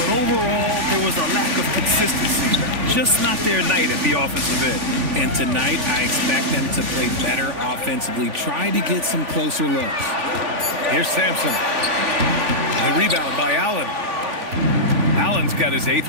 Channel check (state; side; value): late; left; 3.5 ms